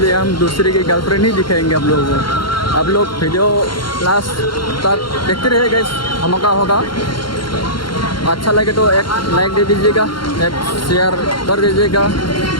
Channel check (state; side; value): late; right; 0.73 ms